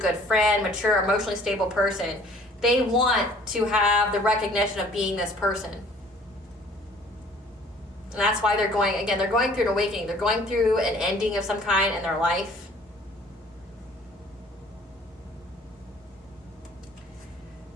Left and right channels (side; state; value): both; normal; correlation 0.54